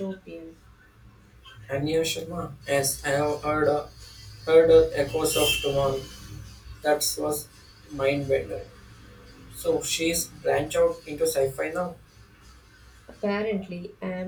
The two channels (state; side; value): identical; both; correlation 1.00